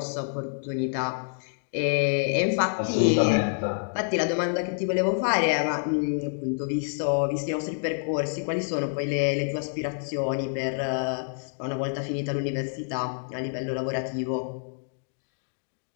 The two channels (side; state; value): right; silent; digital silence